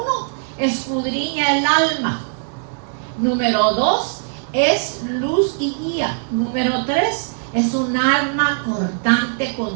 escudriña el alma. Número 2, es luz y guía. Número 3, es un arma cortante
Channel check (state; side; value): silent; left; digital silence